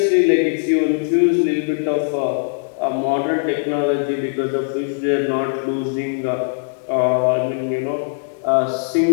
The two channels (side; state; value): right; silent; digital silence